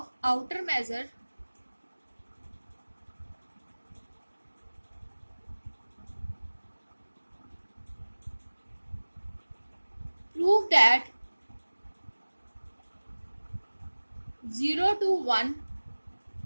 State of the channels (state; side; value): inverted; both; correlation -1.00